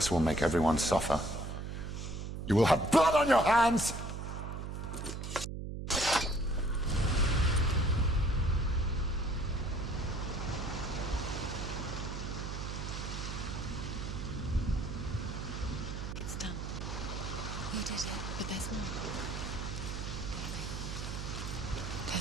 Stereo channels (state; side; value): noise; right; hum, 5 dB below the sound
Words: will make everyone suffer. You will have blood on your hands! It's done. You did it, but there's more.